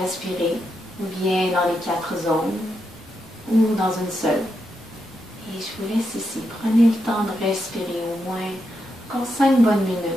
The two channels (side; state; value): both; normal; correlation 0.83